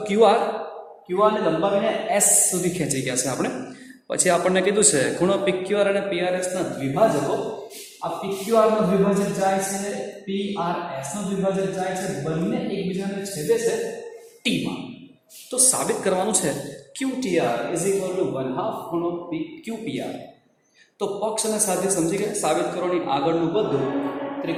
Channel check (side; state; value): both; identical; correlation 1.00